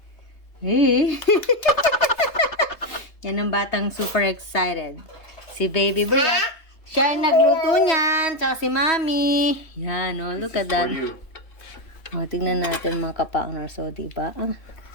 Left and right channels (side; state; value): right; late; 3.3 ms